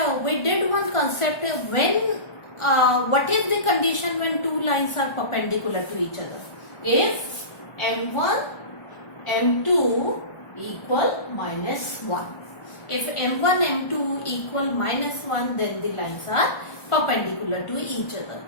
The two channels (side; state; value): right; late; 1.4 ms